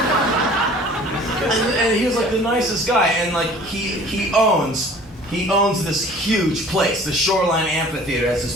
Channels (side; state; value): both; normal; correlation 0.48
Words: And he was like the nicest guy, and like he owns He owns this huge place. The Shoreline Amphitheater has